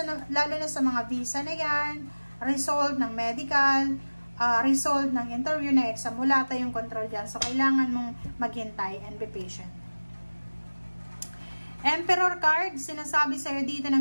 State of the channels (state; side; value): inverted; both; correlation -1.00